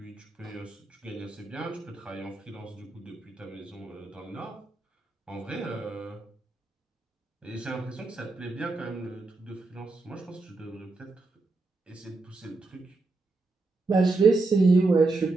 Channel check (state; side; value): quieter; left; 3.4 dB